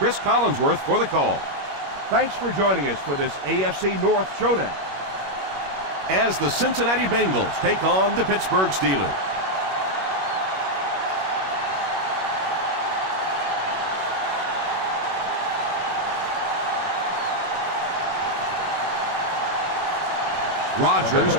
Collinsworth for the call. Thanks for joining us for this AFC North showdown, as the Cincinnati Bengals take on the Pittsburgh Steelers. Rodgers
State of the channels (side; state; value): left; late; 21 ms